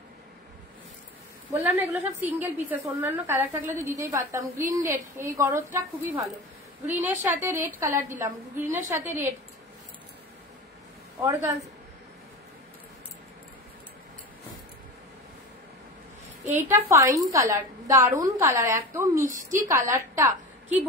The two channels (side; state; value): both; normal; correlation 0.30